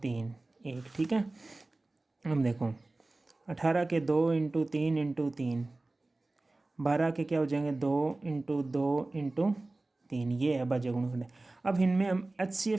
3 1। ठीक है, हम देखो 18 के 2 इंटू 3 इंटू 3, 12 के क्या हो जाएंगे 2 इंटू 2 इंटू 3, ये है अभाज्य गुणनखंड। अब इनमें हम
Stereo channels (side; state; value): left; quieter; 3.0 dB